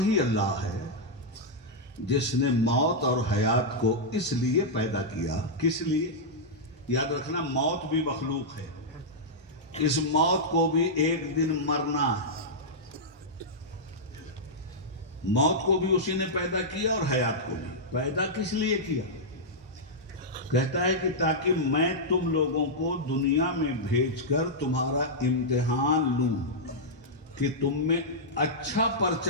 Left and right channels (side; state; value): both; normal; correlation -0.08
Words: اللہ ہے جس نے موت اور حیات کو اس لیے پیدا کیا. کس لیے؟ یاد رکھنا، موت بھی مخلوق ہے. اس موت کو بھی ایک دن مرنا ہے. موت کو بھی اسی نے پیدا کیا اور حیات کو بھی. پیدا کس لیے کیا؟ کہتا ہے کہ تاکہ میں تم لوگوں کو دنیا میں بھیج کر تمہارا امتحان لوں کہ تم میں اچھا